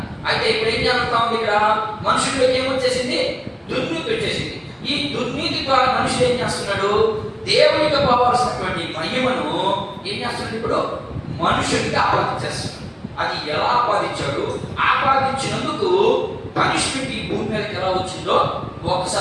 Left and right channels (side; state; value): both; identical; correlation 1.00